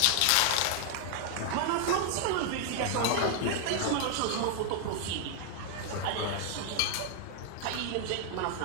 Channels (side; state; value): both; different; correlation 0.00